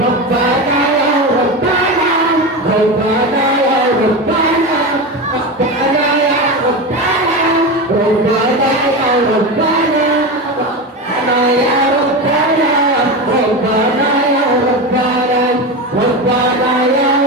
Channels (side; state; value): both; normal; correlation 0.21